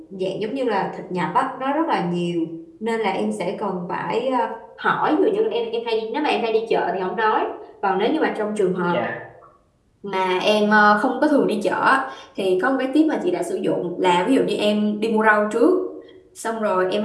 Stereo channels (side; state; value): both; identical; correlation 1.00